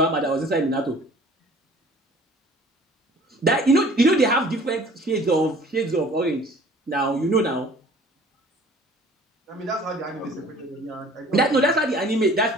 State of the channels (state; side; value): normal; both; correlation 0.50